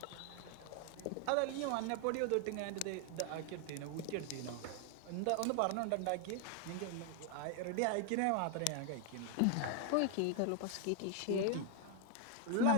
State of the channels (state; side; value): different; both; correlation 0.00